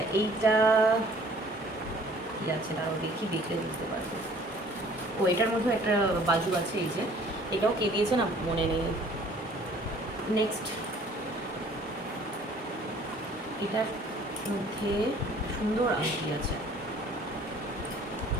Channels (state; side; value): normal; both; correlation 0.53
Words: এইটা কি আছে তাও দেখি, দেখলে বুঝতে পারবো। ও এটার মধ্যে একটা বাজু আছে, এই যে এটাও কে দিয়েছে না মনে নেই। নেক্সট এটার মধ্যে সুন্দর আংটি আছে,